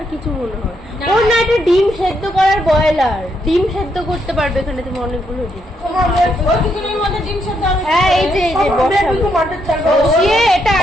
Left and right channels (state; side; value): normal; both; correlation 0.77